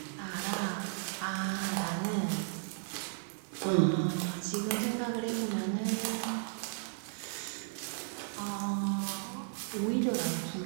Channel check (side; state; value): left; silent; digital silence